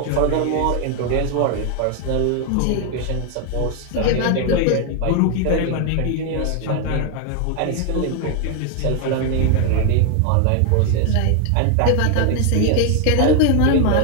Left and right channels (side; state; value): both; different; correlation 0.01